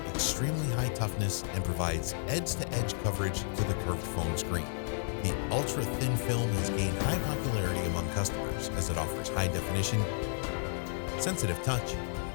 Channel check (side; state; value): right; silent; 56 dB below the other